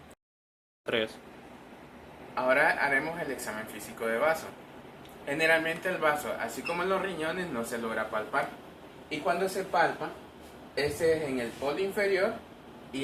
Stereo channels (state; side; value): identical; both; correlation 1.00